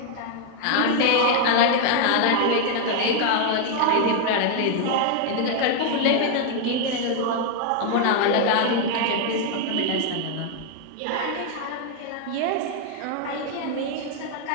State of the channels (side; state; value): both; different; correlation 0.00